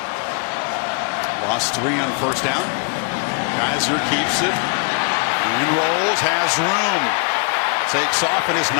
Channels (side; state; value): right; quieter; 37.4 dB